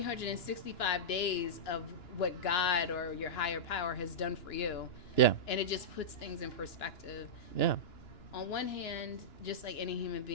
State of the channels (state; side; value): late; right; 2.9 ms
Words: days of what God or your higher power has done for you. Yeah. And it just puts things in perspective. Yeah. On one hand, just like any human